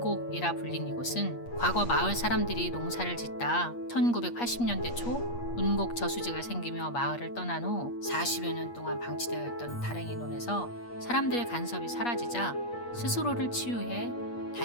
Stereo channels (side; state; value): right; late; 8.4 ms